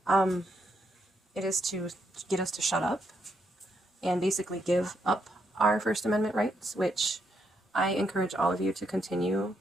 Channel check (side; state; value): both; normal; correlation 0.78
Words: It is to get us to shut up and basically give up our First Amendment rights, which I encourage all of you to continue